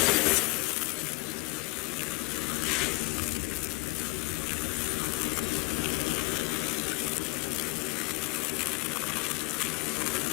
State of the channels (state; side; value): quieter; right; 26.3 dB